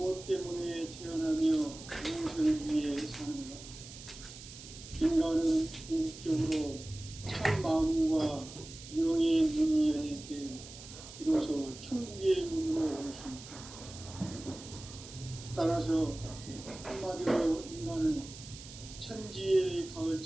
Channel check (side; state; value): right; noise; hiss, 15 dB below the sound